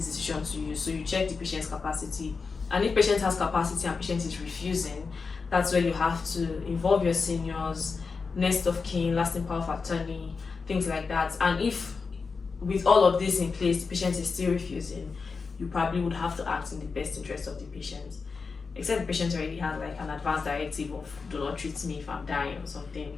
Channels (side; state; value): right; quieter; 4.8 dB